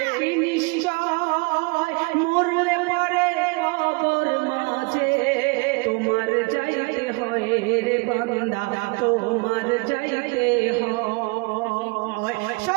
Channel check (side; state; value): left; quieter; 29.3 dB